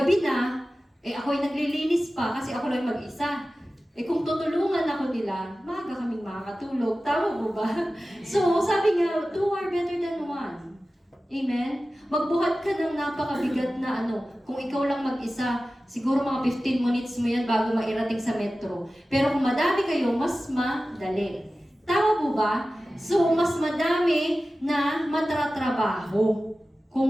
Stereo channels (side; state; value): both; normal; correlation 0.95